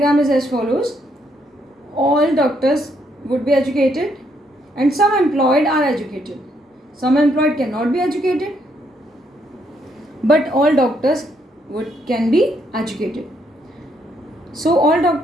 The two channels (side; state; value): both; normal; correlation 0.73